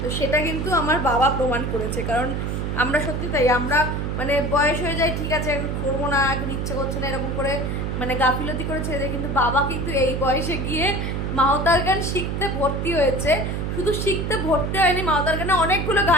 তো সেটা কিন্তু আমার বাবা প্রমাণ করেছে। কারণ আমরা সত্যি তাই, আমরা মানে বয়স হয়ে যায়, ঠিক আছে করবো না, এখন ইচ্ছে করছে না, এরকম করে মানে গাফিলতি করে ছেড়ে দেয়। কিন্তু বাবা কিন্তু এই বয়সে গিয়ে মাওতার গান শিখতে ভর্তি হয়েছে। শুধু শিখতে ভর্তি হয়নি, মাওতার গানে অনেকগুলো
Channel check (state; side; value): noise; right; hum, 2 dB below the sound